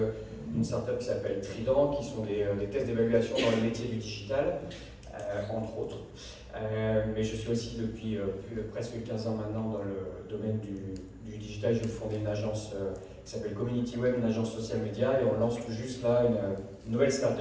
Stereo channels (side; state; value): both; identical; correlation 1.00